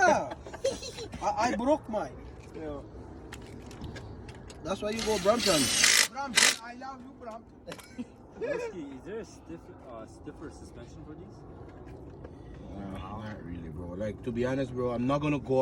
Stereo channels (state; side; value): identical; both; correlation 1.00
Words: I broke mine. Yeah. That's why you go Brampton. Brampton, I love you, Brampton. Whiskey, is there a stiffer suspension for these? Not really, bro. Like, to be honest, bro, I'm not gonna